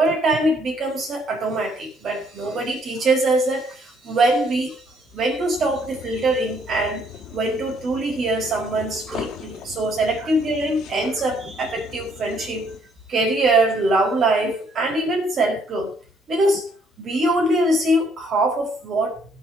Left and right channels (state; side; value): normal; both; correlation 0.66